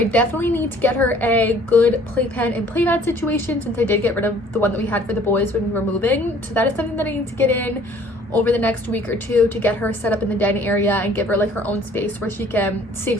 definitely need to get her a good playpen and playmat situation, since I did get rid of the one that we had for the boys when we were moving. So that is something that I need to get in over the next week or two to get her set up in the den area and give her like her own space where she can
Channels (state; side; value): normal; both; correlation 0.55